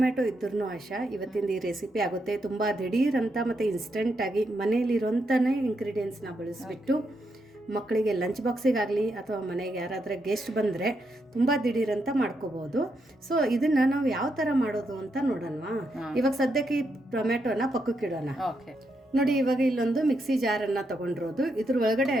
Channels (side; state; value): both; normal; correlation 0.81